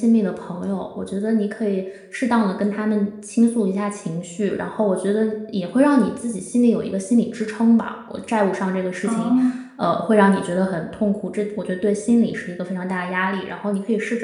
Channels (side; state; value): both; identical; correlation 1.00